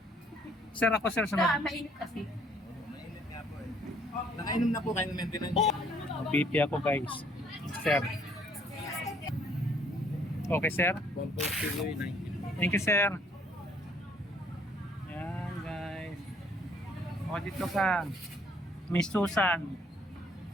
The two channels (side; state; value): both; normal; correlation 0.62